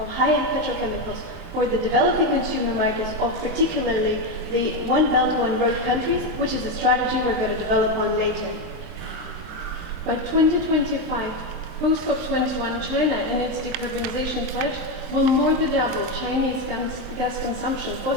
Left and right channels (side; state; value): left; late; 23 ms